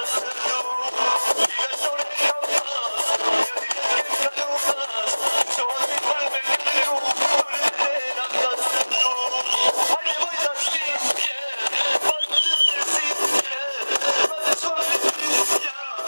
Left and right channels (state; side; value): inverted; both; correlation -1.00